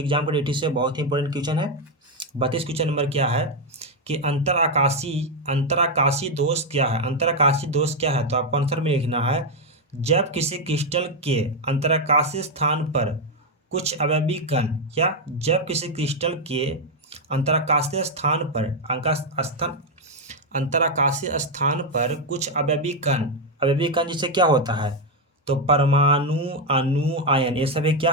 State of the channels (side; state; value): both; normal; correlation 0.03